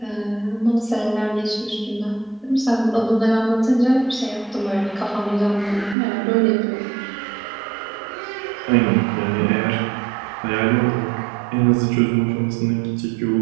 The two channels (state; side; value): drops out; left; at 6.0 s